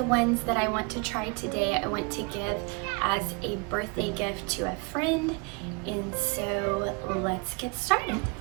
ones that I want to try today, I want to give as a birthday gift to a friend. And so let's get started.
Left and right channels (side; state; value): left; quieter; 31.5 dB